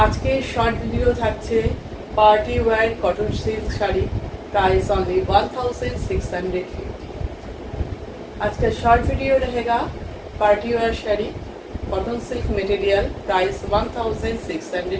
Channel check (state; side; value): identical; both; correlation 1.00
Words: আজকে শর্ট ভিডিও থাকছে party wear cotton silk sari, price only 1650। आज का शॉर्ट वीडियो रहेगा party wear sari cotton silk material, price